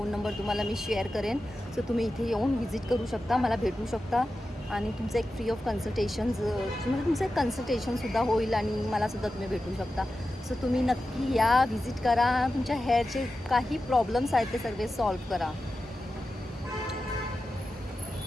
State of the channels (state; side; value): normal; both; correlation 0.92